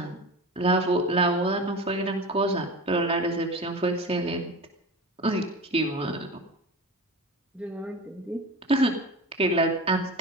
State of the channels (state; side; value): normal; both; correlation 0.31